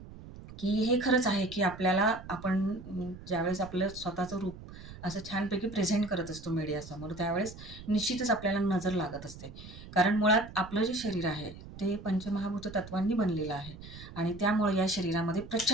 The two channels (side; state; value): right; noise; rumble, 15 dB below the sound